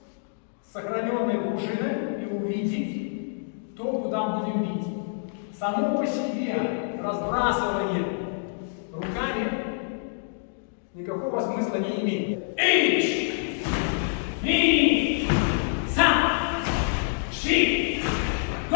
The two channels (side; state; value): right; silent; digital silence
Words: с сохраненной пружиной и увидеть то, куда будем бить. Само по себе разбрасывание руками никакого смысла не имеет. Ич! Ми! Сам! Ши! Го!